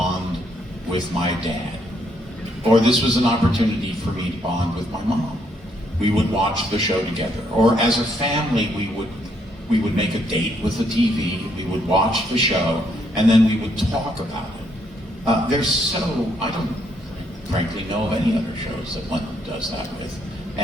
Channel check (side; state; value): both; normal; correlation 0.72